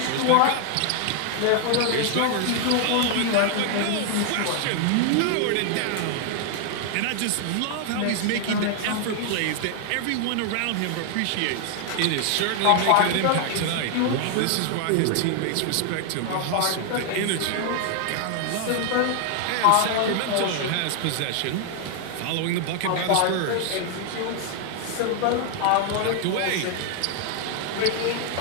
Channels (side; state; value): both; different; correlation 0.00